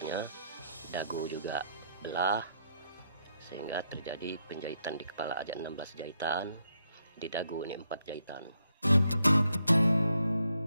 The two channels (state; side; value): inverted; both; correlation -0.78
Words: dagu juga belah, sehingga terjadi penjahitan di kepala aja 16 jahitan, di dagu ini 4 jahitan.